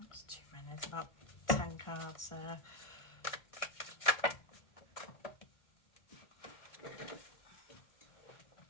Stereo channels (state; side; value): late; right; 1.6 ms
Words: too many. It's about 10 cards there.